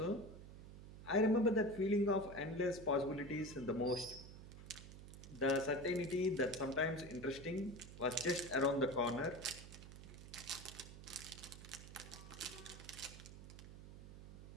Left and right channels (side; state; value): right; noise; hum, 14 dB below the sound